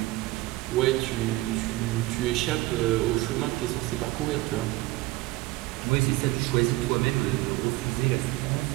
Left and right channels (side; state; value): left; quieter; 19.4 dB